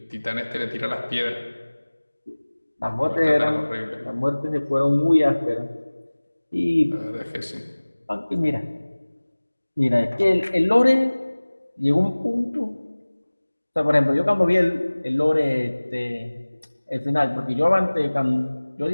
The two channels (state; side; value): inverted; both; correlation -1.00